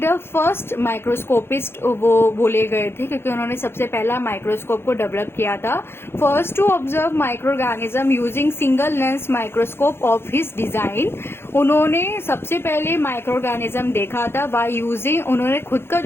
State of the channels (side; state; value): right; late; 0.11 ms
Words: फर्स्ट माइक्रोस्कोपिस्ट वो बोले गए थे क्योंकि उन्होंने सबसे पहला माइक्रोस्कोप को डेवलप किया था। First to observe micro organism using single lens microscope of his design. उन्होंने सबसे पहले माइक्रो ऑर्गेनिज्म देखा था बाय यूजिंग, उन्होंने खुद का